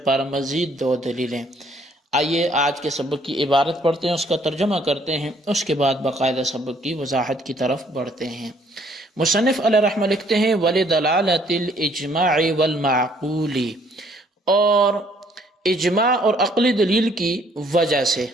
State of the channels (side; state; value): both; normal; correlation 0.63